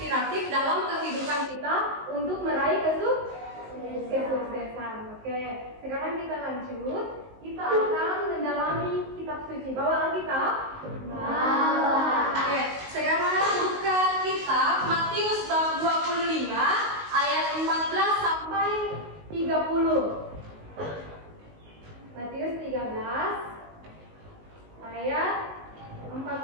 dalam kehidupan kita untuk meraih kesuksesan. Oke, sekarang kita lanjut. Kita akan mendalami kitab suci. Bawa Alkitab? Bawa. Oke, sekarang buka kitab Matius bab 25 ayat 14 sampai 30. Matius 13 ayat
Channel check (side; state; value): left; late; 19 ms